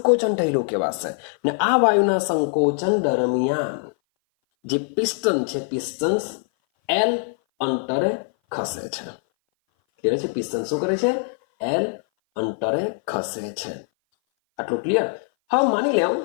થયેલું કહેવાશે. ને આ વાયુના સંકોચન દરમિયાન જે પિસ્ટન છે, પિસ્ટન્સ એલ અંતરે ખસે છે. ક્લિયર છે? પિસ્ટન શું કરે છે? એલ અંતરે ખસે છે. આટલું ક્લિયર? હવે માની લેવું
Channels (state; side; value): silent; right; 58 dB below the other